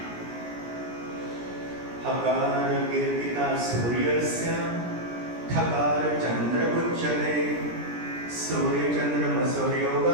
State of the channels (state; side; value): late; left; 17 ms